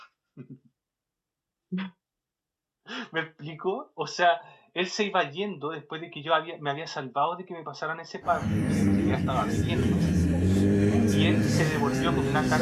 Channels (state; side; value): identical; both; correlation 1.00